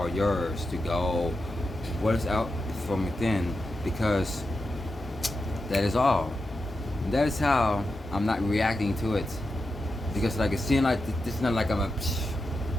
yours to go. What is out from within, because that is all. That is how I'm not reacting to it, because like it seems like this is not like I'm a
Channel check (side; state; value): both; normal; correlation 0.88